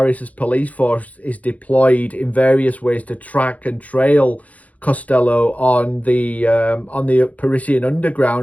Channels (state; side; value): late; right; 0.070 ms